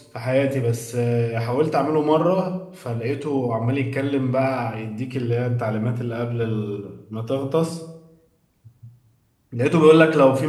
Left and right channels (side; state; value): both; identical; correlation 1.00